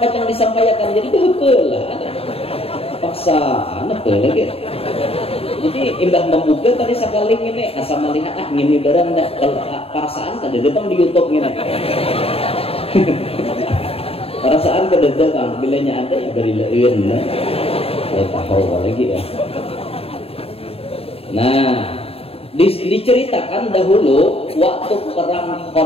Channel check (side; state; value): right; late; 0.28 ms